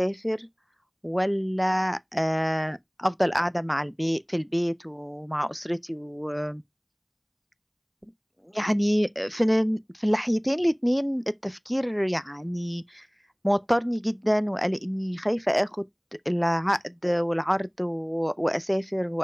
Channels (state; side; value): identical; both; correlation 1.00